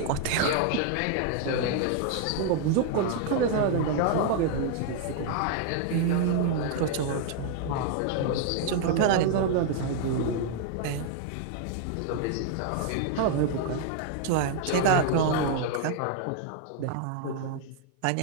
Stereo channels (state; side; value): different; both; correlation 0.00